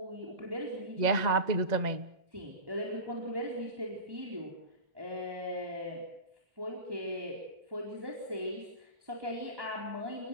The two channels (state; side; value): late; left; 1.9 ms